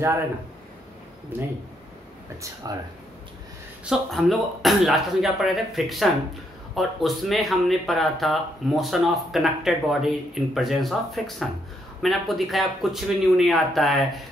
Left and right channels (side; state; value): both; normal; correlation 0.75